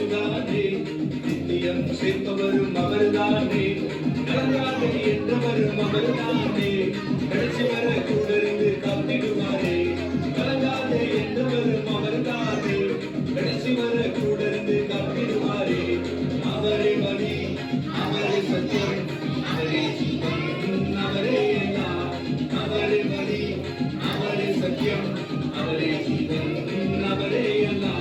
நித்தியம் சேர்ப்பவரும் அவர்தானே. கலங்காத என்றவரும் அவர்தானே, கடைசி வர கூட இருந்து காத்திடுவாரே. கலங்காத என்றவரும் அவர்தானே, கடைசி வர கூட இருந்து காத்திடுவாரே. அவரே வழி, அவரே சத்தியம், அவரே ஜீவன், அவரே எல்லாம். அவரே வழி, அவரே சத்தியம், அவரே ஜீவன், அவரே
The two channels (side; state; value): both; identical; correlation 1.00